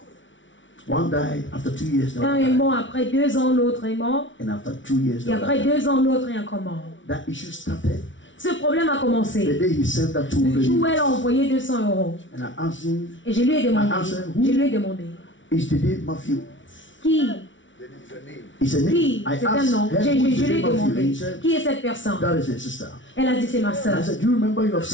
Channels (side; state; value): right; late; 0.56 ms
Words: One died after 2 years, the Un other est died. mort après 2 ans, l'autre est mort. And after 2 years, the Et other après died. 2 ans, l'autre est encore mort. That issue started Ce problème a the commencé day he sent that le 200 jour où elle a euros. envoyé 200 €. And I asked him, Et je lui ai demandé, is the name Matthew? qui, He said, qui, I c'est un nom. asked her, who is Je the lui ai name Matthew? And demandé, he said, qui est cette personne? that is her sister. Elle a dit, c'est ma And soeur. I said, do you remember you have